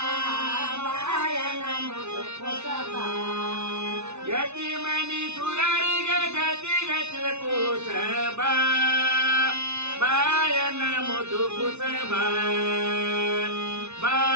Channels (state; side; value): late; left; 0.81 ms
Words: ಬಾಯನ ಮುದು ಕುಸಬ ಯತಿಮನಿ ಸುರರಿಗೆ ಗತಿ ಗತಿ ಕುಸಬ ಬಾಯನ ಮುದು ಕುಸಬ